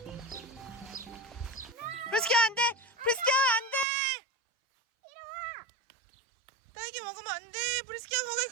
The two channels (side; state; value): left; drops out; at 3.9 s